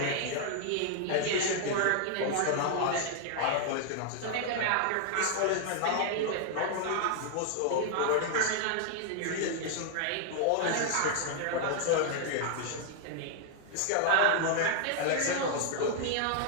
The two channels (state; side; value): different; both; correlation 0.00